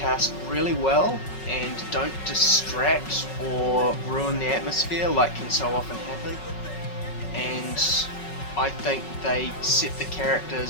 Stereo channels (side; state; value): right; late; 5.4 ms